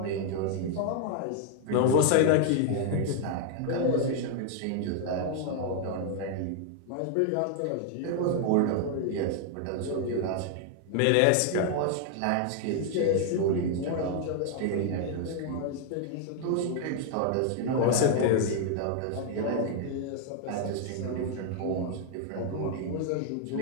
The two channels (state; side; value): different; both; correlation 0.00